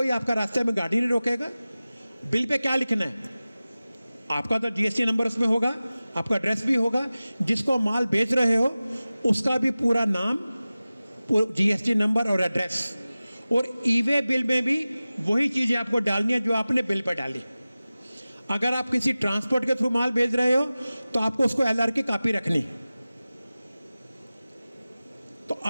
आपका रास्ते में गाड़ी नहीं रोकेगा। बिल पे क्या लिखना है, आपका तो जीएसटी नंबर उसमें होगा, आपका एड्रेस भी होगा, जिसको माल बेच रहे हो उसका भी पूरा नाम, जीएसटी नंबर और एड्रेस। और ई-वे बिल में भी वही चीज़ें आपको डालनी है जो आपने बिल पर डाली। अगर आप किसी ट्रांसपोर्ट के थ्रू माल भेज रहे हो तो आपको उसको एलआर की कॉपी रखनी। तो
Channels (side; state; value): both; inverted; correlation -0.97